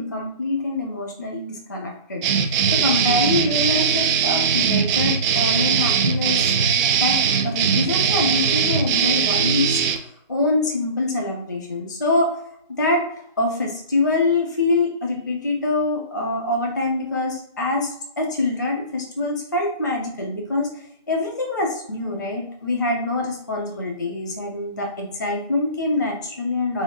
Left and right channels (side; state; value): both; inverted; correlation -0.31